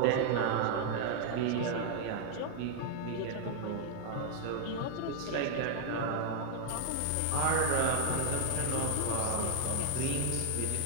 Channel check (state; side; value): different; both; correlation 0.00